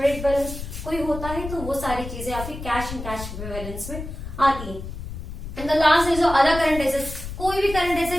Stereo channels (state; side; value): noise; left; rumble, 9 dB below the sound